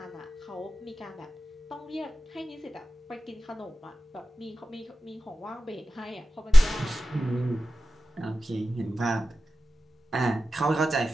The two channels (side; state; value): both; normal; correlation 0.94